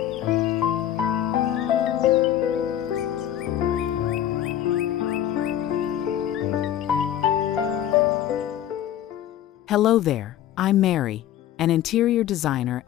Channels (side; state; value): right; quieter; 11.4 dB